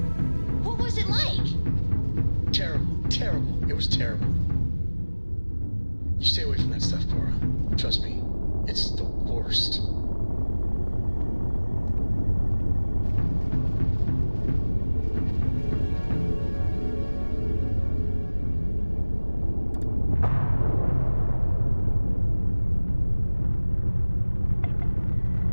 What was it like? Terrible. It was terrible. You stay away from that stuff, Cora. Trust me, it's the worst.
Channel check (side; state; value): both; inverted; correlation -1.00